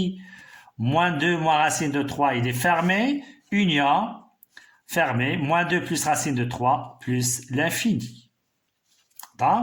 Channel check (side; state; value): both; identical; correlation 1.00